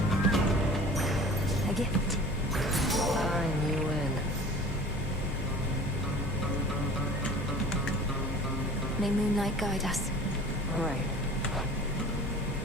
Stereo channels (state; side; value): normal; both; correlation 0.43